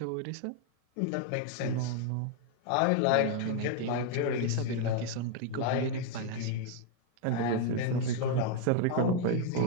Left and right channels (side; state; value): both; different; correlation 0.00